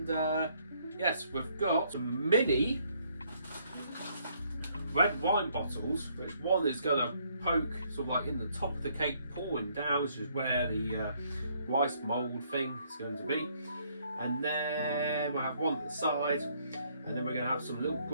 yes, we've got some mini red wine bottles, which one is going to poke sort of like in the top of the cake, pouring down, which is where the rice mould thing is going to be. And then we'll have one at the side, and then we're going to have some little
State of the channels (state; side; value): inverted; both; correlation -0.68